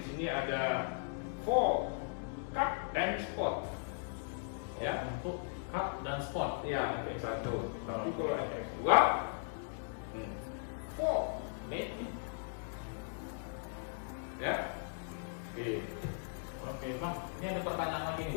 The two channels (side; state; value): right; silent; digital silence